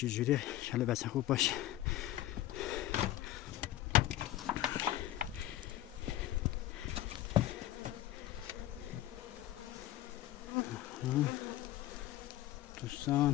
انشالله بسن خوب باشه.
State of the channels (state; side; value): quieter; right; 14.3 dB